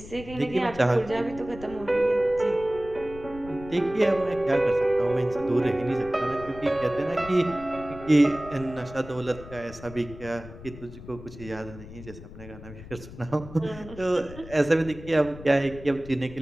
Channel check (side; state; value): left; noise; rumble, 15 dB below the sound